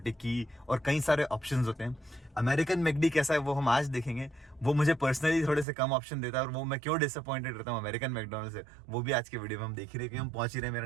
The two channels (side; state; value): left; drops out; at 5.7 s